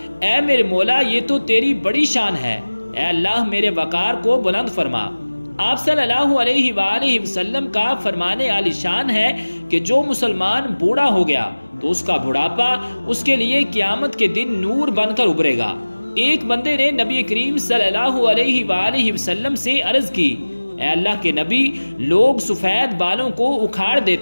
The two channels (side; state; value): both; inverted; correlation -1.00